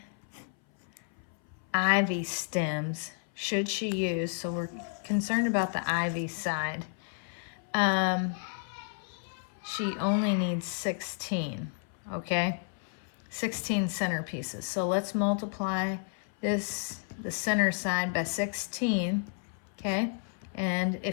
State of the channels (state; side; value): silent; right; 57 dB below the other